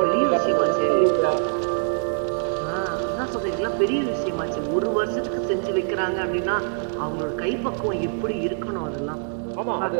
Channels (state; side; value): silent; left; 55 dB below the other